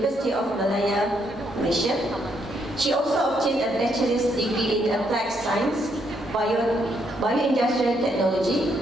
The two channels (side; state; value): both; normal; correlation 0.74